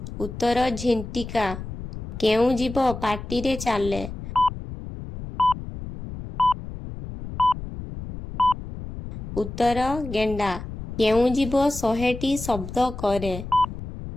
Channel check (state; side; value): noise; left; rumble, 9 dB below the sound